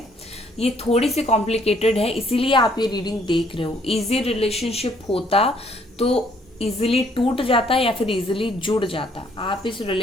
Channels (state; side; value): normal; both; correlation 0.65